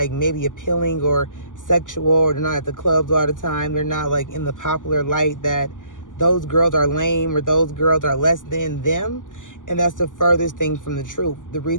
maybe appealing or sexual, or they're not at the clubs all the time, they're not like in the popular light, that those girls are lame or those girls are less than them. And that's the furthest thing from the truth. The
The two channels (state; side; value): late; right; 0.88 ms